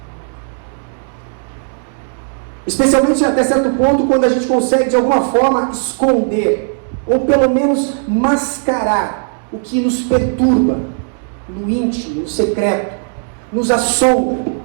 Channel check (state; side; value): silent; left; digital silence